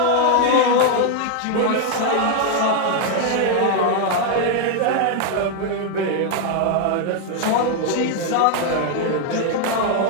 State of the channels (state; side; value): different; both; correlation 0.00